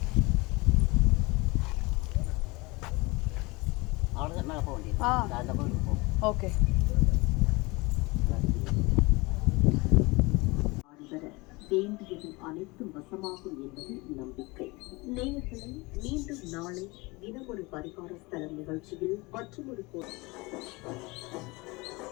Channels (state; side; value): quieter; right; 24.5 dB